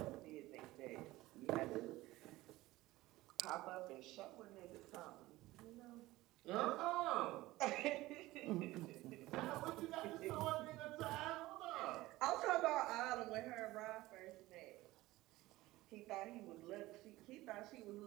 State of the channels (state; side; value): quieter; left; 18.2 dB